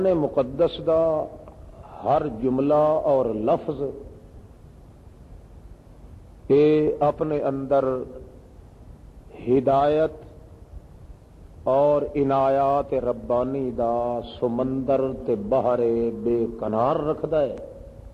مقدس دا ہر جملہ اور لفظ یہ اپنے اندر ہدایت اور عنایات ربانی دا سمندر تے بحر بے کنار رکھدا ہے،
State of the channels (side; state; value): both; identical; correlation 1.00